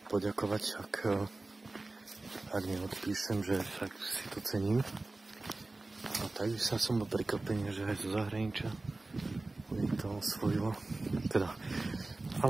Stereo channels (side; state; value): left; quieter; 3.1 dB